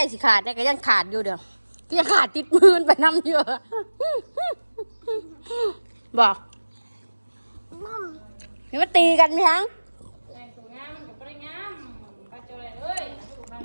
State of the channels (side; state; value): both; inverted; correlation -1.00